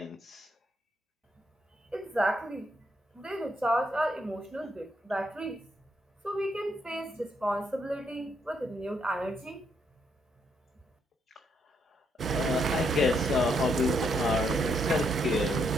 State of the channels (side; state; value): both; normal; correlation 0.75